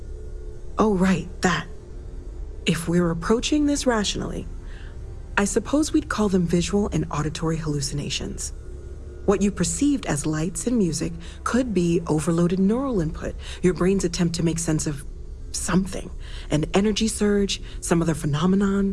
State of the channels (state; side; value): identical; both; correlation 1.00